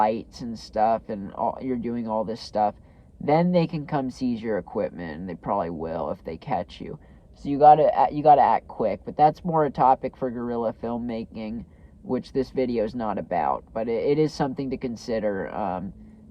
and stuff, and you're doing all this stuff, then they can come seize your equipment, and they probably will if they catch you. So you gotta act quick. But that's more a topic for guerrilla filmmaking, which this video is not about. But it is something to consider.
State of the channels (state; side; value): identical; both; correlation 1.00